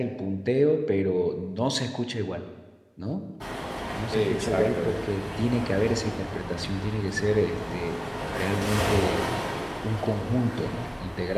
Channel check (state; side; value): identical; both; correlation 1.00